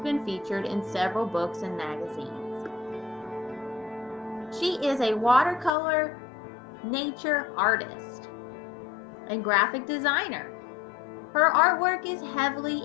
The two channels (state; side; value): drops out; right; at 5.7 s